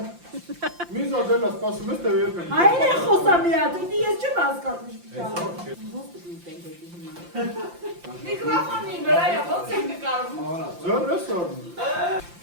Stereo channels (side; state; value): left; late; 5.8 ms